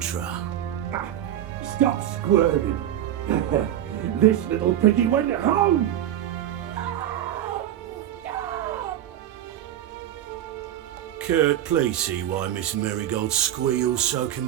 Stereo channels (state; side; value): quieter; left; 11.7 dB